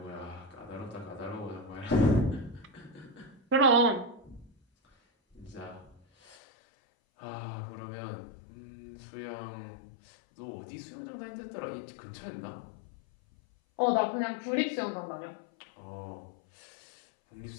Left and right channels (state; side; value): drops out; right; at 6.4 s